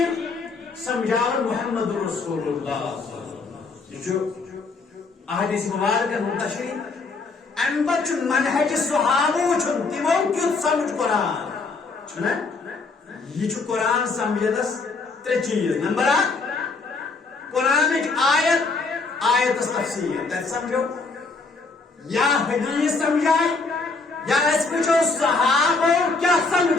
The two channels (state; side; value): quieter; right; 4.0 dB